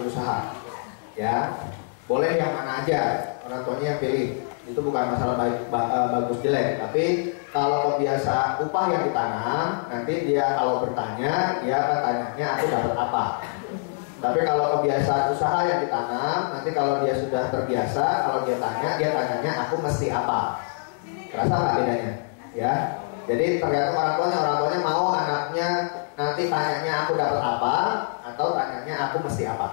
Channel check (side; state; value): right; silent; digital silence